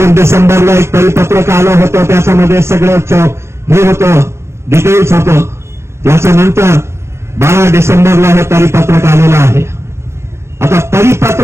डिसेंबरला एक परिपत्रक आलं होतं, त्याच्यामध्ये सगळं हे होतं, डिटेल्स होतं. त्याच्यानंतर 12 डिसेंबरला हे परिपत्रक आलेलं आहे. आता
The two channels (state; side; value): late; left; 0.13 ms